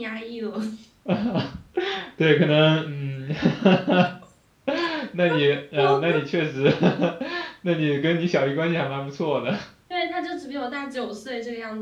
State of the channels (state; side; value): identical; both; correlation 1.00